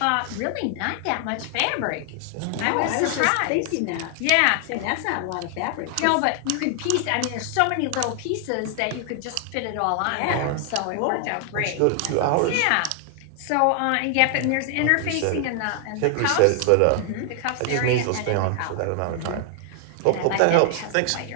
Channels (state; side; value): different; both; correlation 0.00